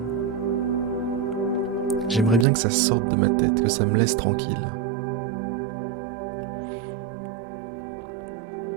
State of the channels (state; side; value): drops out; left; at 2.5 s